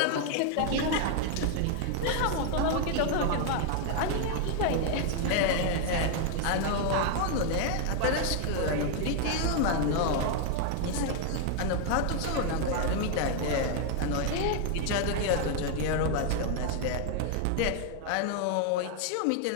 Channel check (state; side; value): different; both; correlation 0.00